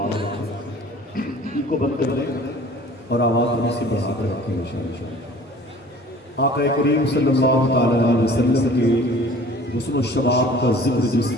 ایک کو بند کر دیں اور آواز میں سے بڑھا کر رکھیں انشاءاللہ. آقا کریم صلی اللہ تعالیٰ علیہ وسلم کے حسن و شباب کا ذکر جس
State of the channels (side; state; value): both; normal; correlation 0.48